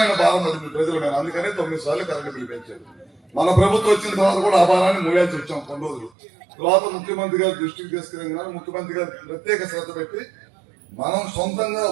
భారం పడింది ప్రజల మీద. అందుకనే 9 సార్లు కరెంటు బిల్లు పెంచారు. మన ప్రభుత్వం వచ్చిన తర్వాత కూడా ఆ భారాన్ని మోయాల్సి వచ్చాం కొన్ని రోజులు. తర్వాత ముఖ్యమంత్రి గారు దృష్టికి తీసుకెళ్ళిన ముఖ్యమంత్రి గారు ప్రత్యేక శ్రద్ధ పెట్టి మనం సొంతంగా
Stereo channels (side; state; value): left; drops out; at 6.1 s